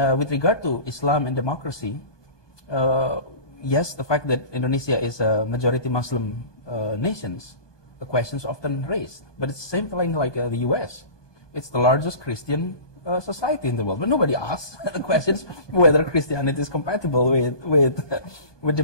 with regard to Islam and democracy, yes, the fact that Indonesia is a majority Muslim nations, the questions often raised. But it's the same thing like the U.S. It's the largest Christian society in the world, but nobody asks the questions whether Christianity is compatible with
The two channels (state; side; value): late; right; 1.2 ms